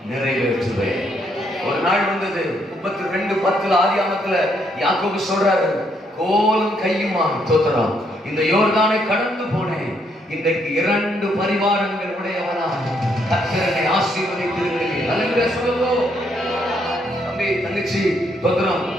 நிறைவேற்றுவேன். ஒரு நாள் வந்தது, 32:10 ஆதியாகமத்துல யாக்கோபு சொல்றாரு, கோலும் கையுமா தோத்திரம் இந்த யோர்தானை கடந்து போனேன், இன்றைக்கு 2 பரிவாரங்கள் உடையவனா கர்த்தரை ஆசீர்வதித்திருக்கிறேன். அல்லேலூயா சொல்லுவோம். தம்பி தங்கச்சி தோத்திரம்,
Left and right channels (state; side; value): normal; both; correlation 0.73